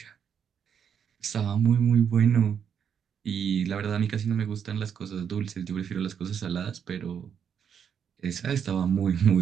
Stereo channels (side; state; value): left; quieter; 7.8 dB